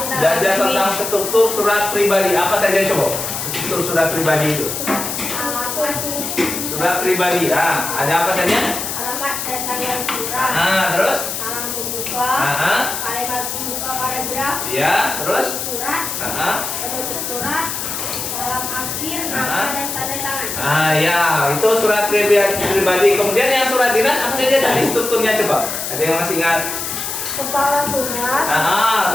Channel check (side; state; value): left; noise; hiss, 4 dB below the sound